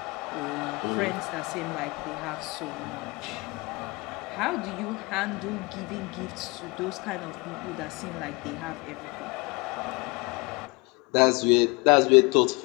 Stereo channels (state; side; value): quieter; right; 27.1 dB